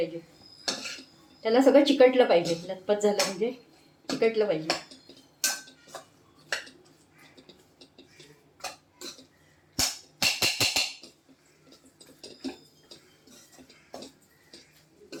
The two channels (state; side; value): identical; both; correlation 1.00